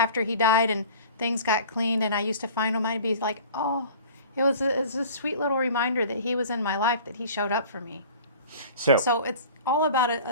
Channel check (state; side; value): inverted; both; correlation -0.44